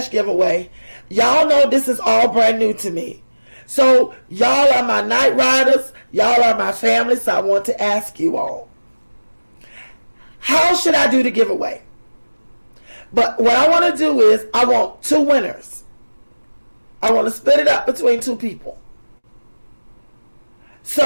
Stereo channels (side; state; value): both; inverted; correlation -1.00